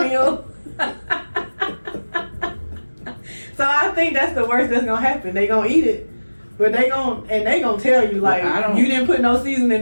So I think that's the worst that's gonna happen. They gonna eat it, but they gonna tell you like, you didn't put no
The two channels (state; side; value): inverted; both; correlation -1.00